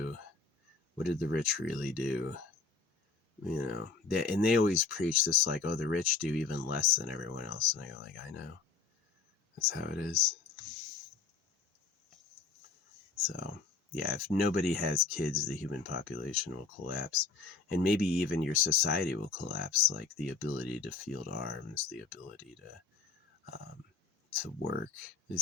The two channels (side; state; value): right; quieter; 4.8 dB